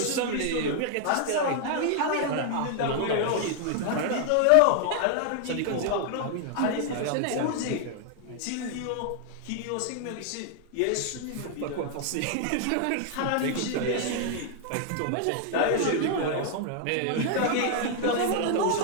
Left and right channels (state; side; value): different; both; correlation 0.00